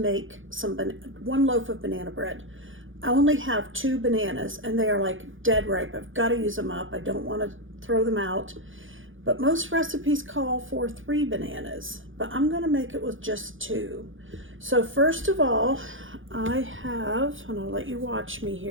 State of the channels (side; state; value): left; late; 0.58 ms